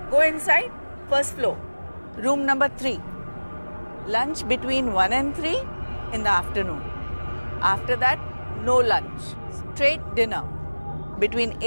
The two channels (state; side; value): inverted; both; correlation -1.00